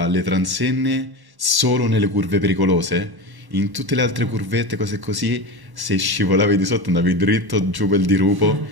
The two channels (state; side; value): late; left; 1.1 ms